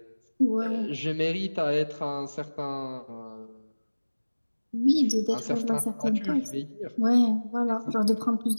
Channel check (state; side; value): inverted; both; correlation -1.00